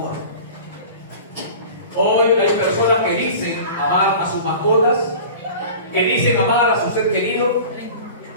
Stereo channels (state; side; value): inverted; both; correlation -0.39